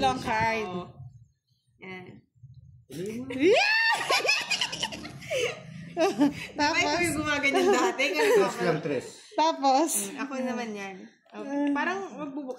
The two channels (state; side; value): identical; both; correlation 1.00